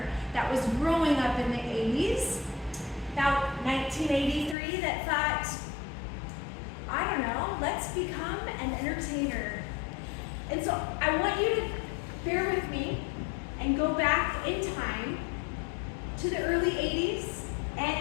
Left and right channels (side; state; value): right; drops out; at 4.5 s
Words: that was growing up in the 80s, about 1983, that thought, I don't know, let's become an entertainer. And so I want you to bear with me and go back in time to the early 80s,